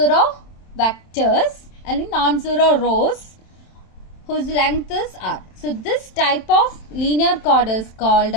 vectors and non-zero rows whose length is r. So this type of linear chord is called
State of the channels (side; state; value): right; late; 27 ms